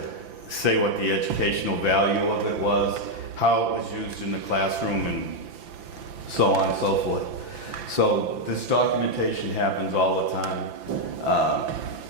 say what the educational value of it was, how it was used in the classroom, and so on and so forth. So this documentation happens all the time.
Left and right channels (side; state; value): left; late; 5.9 ms